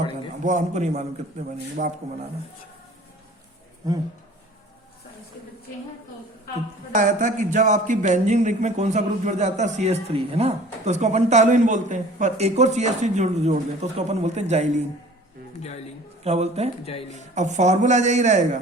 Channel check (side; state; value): both; normal; correlation 0.47